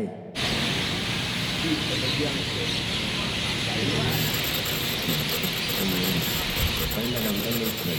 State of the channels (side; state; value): both; identical; correlation 1.00